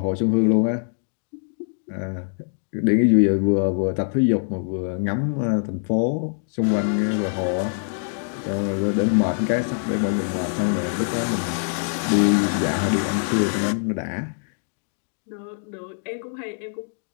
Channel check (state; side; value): silent; right; digital silence